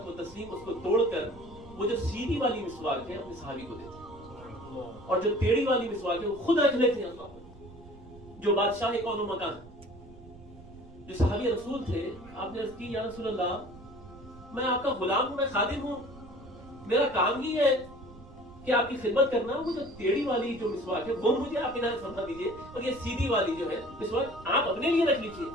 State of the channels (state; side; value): noise; right; rumble, 19 dB below the sound